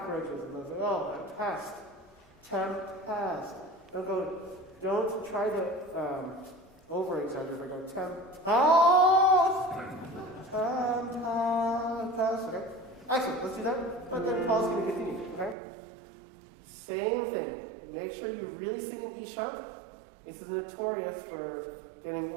and those like, pest, tempest. Don't try to over-exaggerate by going tempest, okay? Excellent, let's do that. But then Paul's going to continue, okay? Same thing. Make sure you really sing in E sharp. This is notorious for getting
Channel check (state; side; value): drops out; left; at 15.6 s